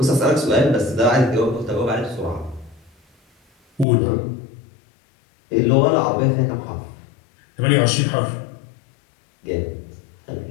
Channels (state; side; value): drops out; right; at 3.9 s